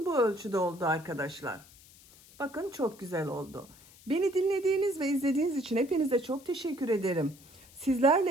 Bu ölçüde oldu arkadaşlar. Bakın çok güzel oldu. Beni dinlediğiniz ve izlediğiniz için hepinize çok teşekkür ederim. Sizlerle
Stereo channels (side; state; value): left; noise; hiss, 24 dB below the sound